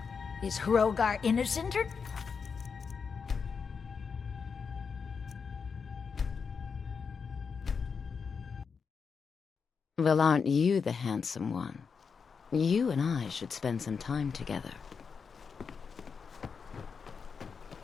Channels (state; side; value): quieter; right; 5.7 dB